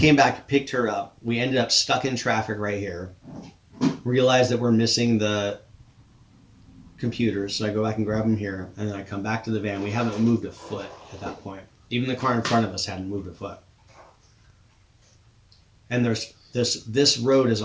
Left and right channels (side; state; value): both; identical; correlation 1.00